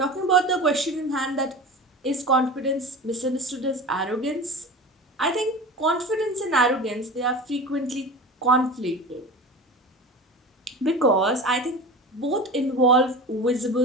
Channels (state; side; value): normal; both; correlation 0.33